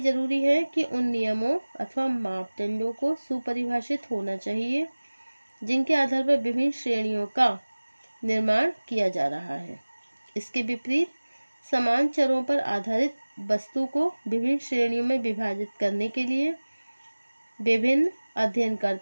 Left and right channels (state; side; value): inverted; both; correlation -1.00